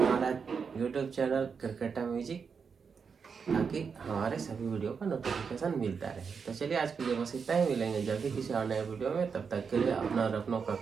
यूट्यूब चैनल क्रिकेटा म्यूजिक, ताकि हमारे सभी वीडियो का नोटिफिकेशन मिलता रहे। तो चलिए आज के लिए बस इतना ही, मिलेंगे जल्दी किसी और नए वीडियो में। तब तक के लिए अपना और अपनों का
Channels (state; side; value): quieter; left; 5.9 dB